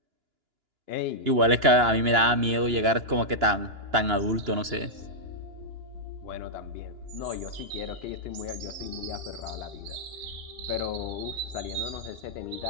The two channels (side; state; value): left; late; 2.9 ms